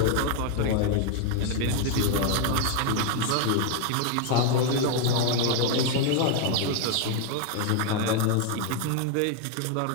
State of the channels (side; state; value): both; different; correlation 0.00